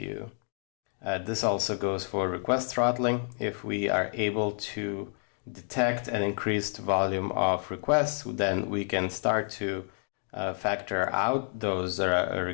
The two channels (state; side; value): silent; right; 58 dB below the other